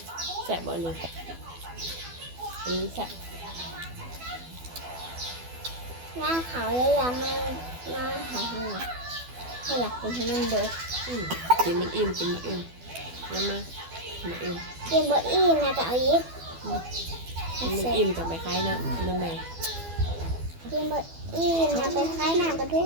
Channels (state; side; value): late; left; 12 ms